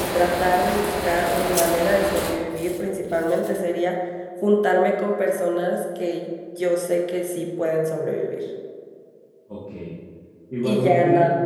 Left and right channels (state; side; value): identical; both; correlation 1.00